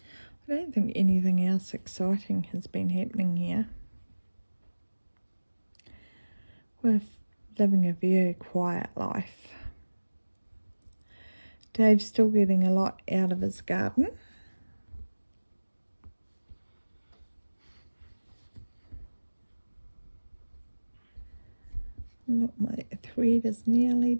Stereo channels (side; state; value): both; inverted; correlation -1.00